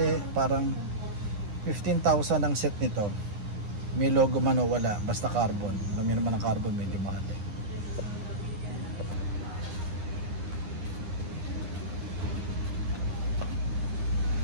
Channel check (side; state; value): left; late; 9.9 ms